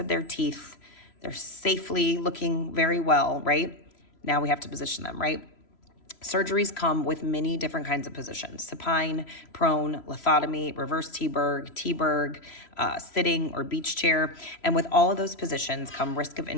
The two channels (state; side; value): late; right; 3.0 ms